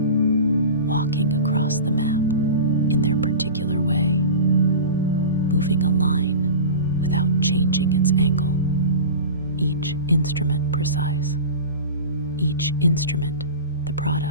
walking across the map in their particular way, moving a line without changing its angle. Each instrument precise. Each instrument the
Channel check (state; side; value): inverted; both; correlation -0.31